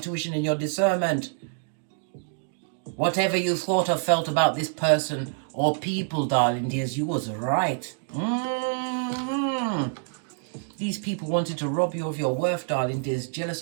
and your discernment? Whatever you thought or felt about this person or people, darling dears, you was right. These people wanted to rob you of your worth, darling dears, jealous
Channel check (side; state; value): left; silent; digital silence